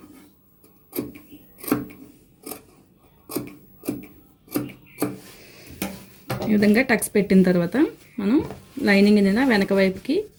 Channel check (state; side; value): identical; both; correlation 1.00